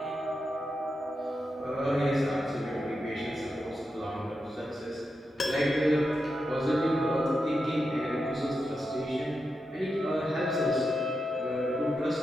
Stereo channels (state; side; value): normal; both; correlation 0.87